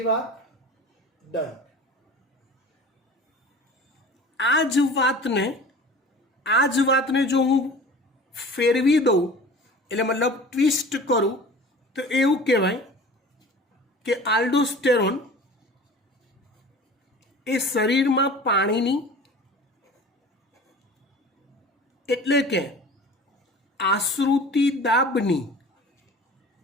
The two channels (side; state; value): both; normal; correlation 0.41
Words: વાત? ડન. આ જ વાતને જો હું ફેરવી દઉં, એટલે મતલબ ટ્વિસ્ટ કરું, તો એવું કહેવાય કે આલ્ડોસ્ટેરોન એ શરીરમાં પાણીની એટલે કે આશ્રુતિ દાબની